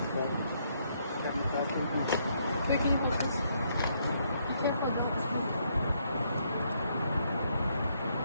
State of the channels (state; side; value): inverted; both; correlation -0.73